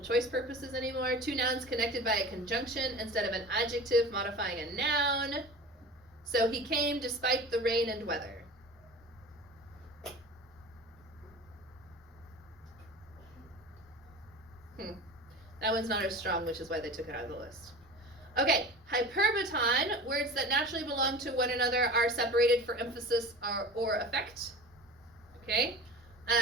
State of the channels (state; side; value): normal; both; correlation 0.36